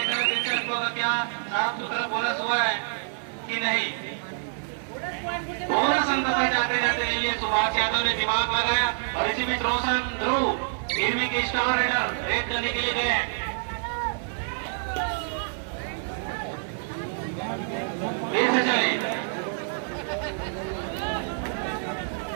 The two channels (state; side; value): silent; left; 60 dB below the other